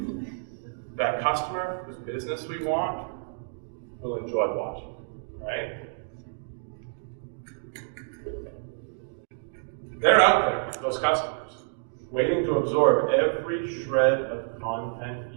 that customer whose business we want will enjoy watching, right? They're out there, those customers, waiting to absorb every shred of content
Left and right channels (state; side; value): silent; left; digital silence